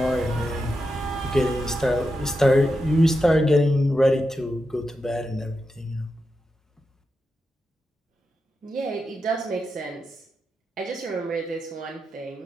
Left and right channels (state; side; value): normal; both; correlation 0.88